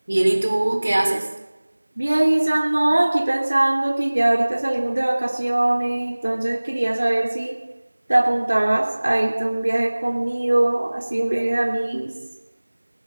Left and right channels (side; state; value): both; inverted; correlation -1.00